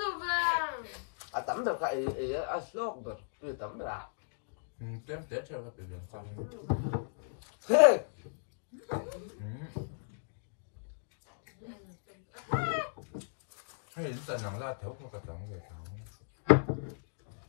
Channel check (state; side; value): silent; right; digital silence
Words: về. à tắm được cái ấy à sốt được từ tắm được à Tuyến Tết cho các bệnh viện xong. thế Hay dần nắng ra thấu không cả trắng về thấu.